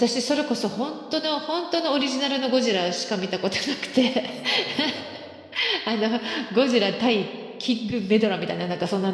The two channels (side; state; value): both; identical; correlation 1.00